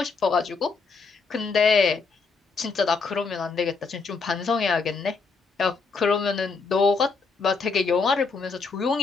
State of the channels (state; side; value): quieter; right; 4.6 dB